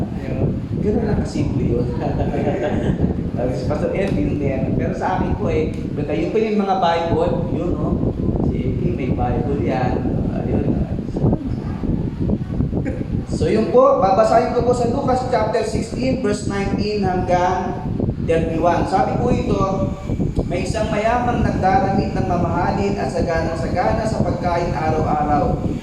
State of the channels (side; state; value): both; identical; correlation 1.00